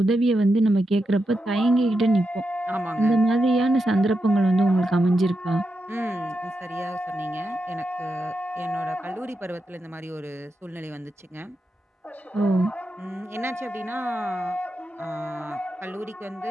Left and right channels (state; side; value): normal; both; correlation 0.87